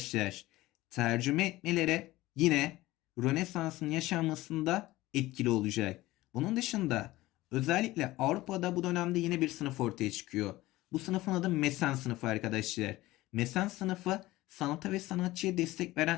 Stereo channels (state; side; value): quieter; right; 18.0 dB